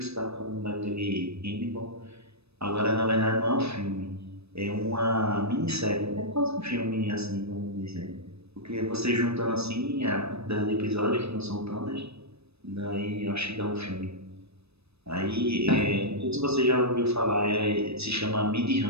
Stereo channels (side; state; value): left; late; 0.79 ms